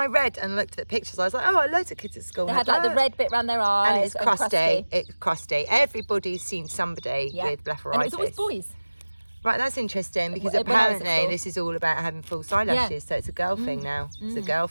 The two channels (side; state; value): both; inverted; correlation -1.00